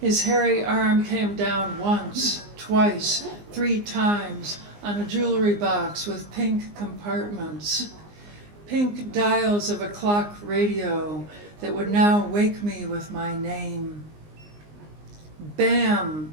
hairy arm came down once, twice, 3 times on a jewelry box with pink compartments, pink dials of a clock radio that would now wake me with my name. Bam!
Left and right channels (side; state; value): left; late; 19 ms